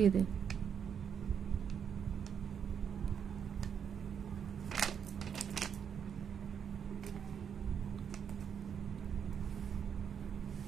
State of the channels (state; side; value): quieter; left; 7.7 dB